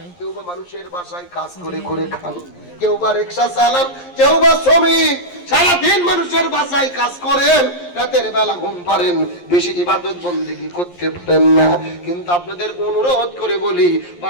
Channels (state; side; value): late; right; 11 ms